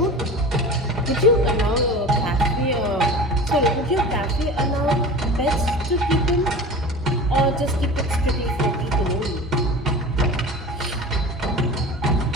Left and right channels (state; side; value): normal; both; correlation 0.35